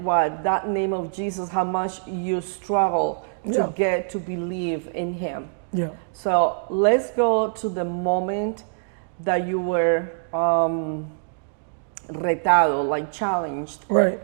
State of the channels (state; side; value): silent; left; digital silence